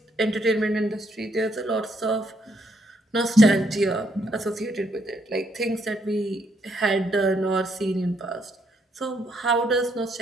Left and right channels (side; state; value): both; normal; correlation 0.73